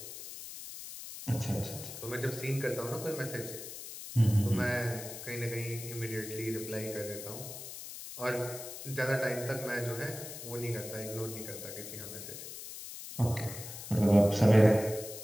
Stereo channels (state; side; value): noise; left; hiss, 10 dB below the sound